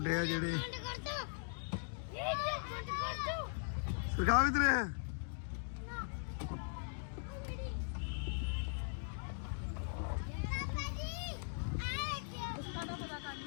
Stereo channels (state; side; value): silent; right; digital silence